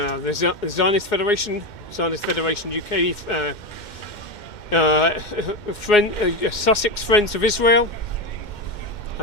Zionist Federation UK, Sussex Friends of Israel.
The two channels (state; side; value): late; right; 2.1 ms